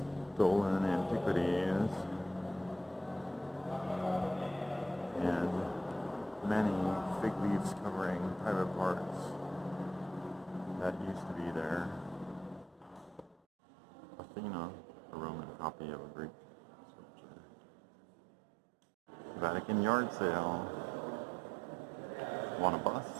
Stolen antiquities. And many fig leaves covering private parts that used to be there. Athena, a Roman copy of a Greek sculpture. Vatican yard sale. Want a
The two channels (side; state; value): left; drops out; at 13.4 s